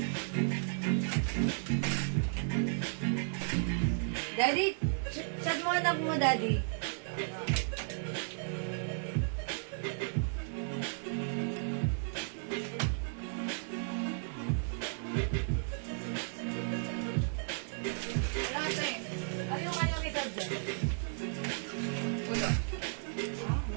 Daddy, chat mo anak mo, Daddy. Ano yung kanyang edad dyan? Wala.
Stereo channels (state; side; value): silent; left; digital silence